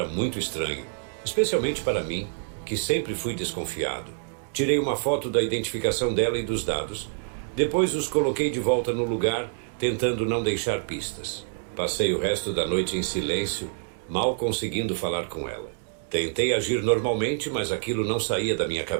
muito estranho, especialmente para mim, que sempre fui desconfiado. Tirei uma foto da identificação dela e dos dados. Depois os coloquei de volta no lugar, tentando não deixar pistas. Passei o resto da noite em silêncio, mal conseguindo falar com ela. Tentei agir normalmente, mas aquilo não saía da minha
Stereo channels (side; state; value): left; silent; digital silence